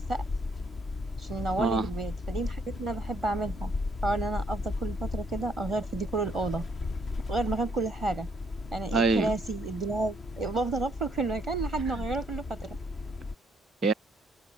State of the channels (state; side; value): normal; both; correlation 0.70